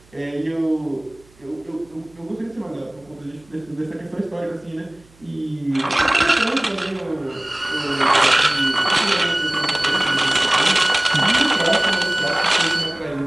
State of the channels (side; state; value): right; noise; hum, 29 dB below the sound